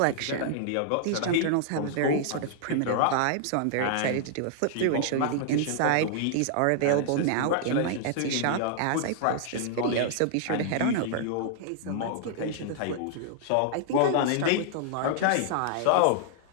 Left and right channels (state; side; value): different; both; correlation -0.01